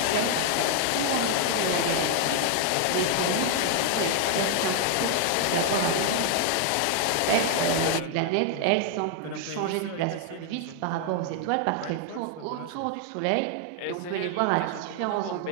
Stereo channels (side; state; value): both; different; correlation 0.00